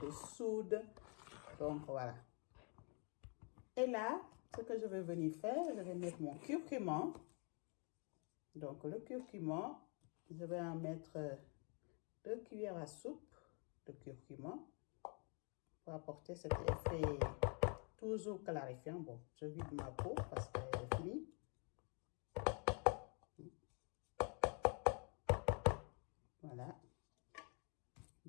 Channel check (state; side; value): quieter; right; 36.8 dB